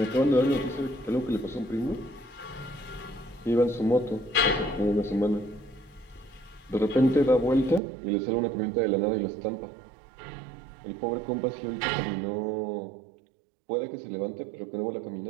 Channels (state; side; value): drops out; left; at 7.8 s